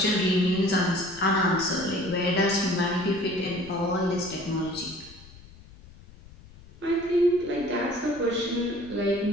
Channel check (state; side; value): noise; left; rumble, 21 dB below the sound